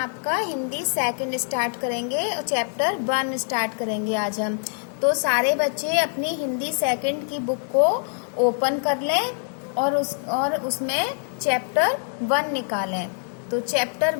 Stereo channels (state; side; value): silent; right; 61 dB below the other